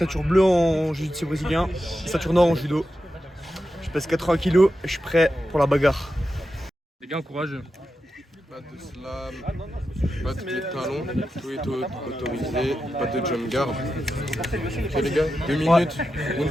bleue en jiu-jitsu brésilien et ceinture noire en judo. Je pèse 80 kg et je suis prêt pour la bagarre. Les gars, courageux. Pas de slam, pas de pied de talon, tout est autorisé, pas de jump guard. Ok les gars, 2 minutes,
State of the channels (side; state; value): both; normal; correlation 0.89